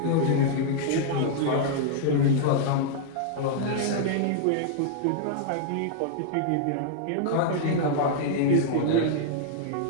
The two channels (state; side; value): different; both; correlation -0.01